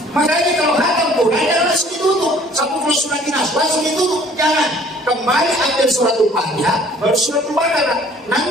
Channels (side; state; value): both; normal; correlation 0.54